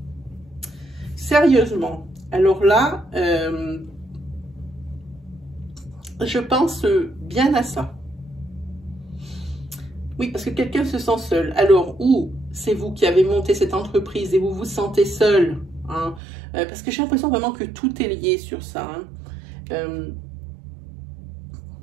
Sérieusement. Alors là, je pense bien à ça. Oui, parce que quelqu'un se sent seul. Alors, ou c'est vous qui avez monté cette entreprise et vous vous sentez seul. Hein, parce que j'ai l'impression vraiment que tout est lié sur ça. Hein.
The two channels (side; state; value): left; drops out; at 16.2 s